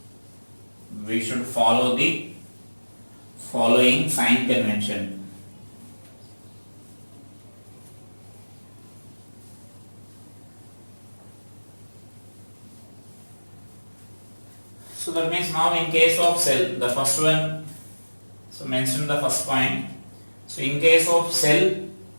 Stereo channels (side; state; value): both; inverted; correlation -1.00